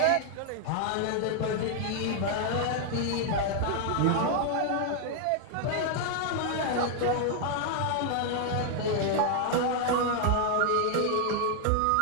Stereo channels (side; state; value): both; different; correlation 0.00